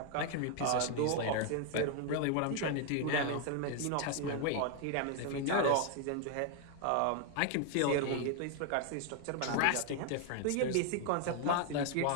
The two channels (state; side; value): different; both; correlation 0.01